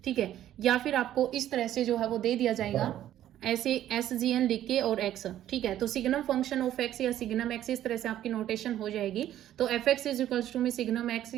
ठीक है। या फिर आपको इस तरह से जो है वो दे दिया जाएगा ऐसे SGN लिख के और x, ठीक है। तो सिग्नम फंक्शन ऑफ x या सिग्नम x इस तरह से आपकी नोटेशन हो जाएगी। तो F x is equals to में सिग्नम x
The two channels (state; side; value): quieter; left; 12.1 dB